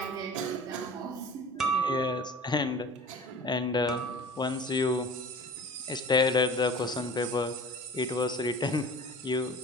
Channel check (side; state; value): both; normal; correlation 0.40